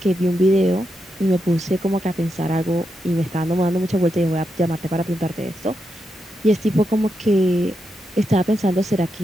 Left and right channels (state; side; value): normal; both; correlation 0.85